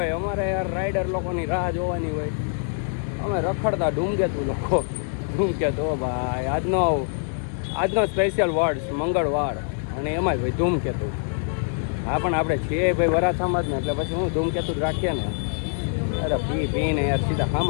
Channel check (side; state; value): right; silent; 62 dB below the other